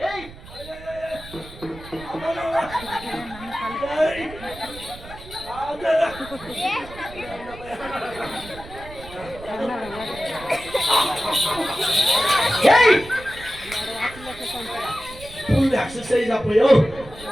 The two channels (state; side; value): noise; right; rumble, 16 dB below the sound